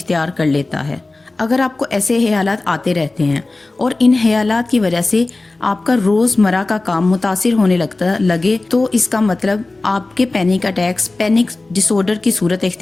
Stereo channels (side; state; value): right; quieter; 3.2 dB